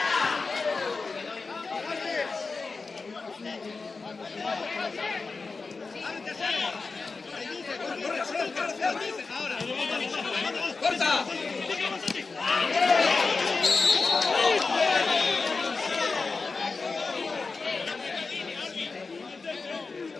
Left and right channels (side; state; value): right; quieter; 4.2 dB